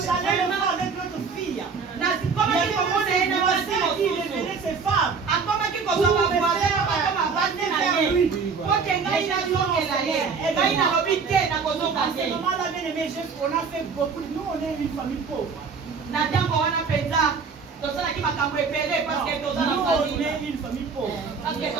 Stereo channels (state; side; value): quieter; left; 5.3 dB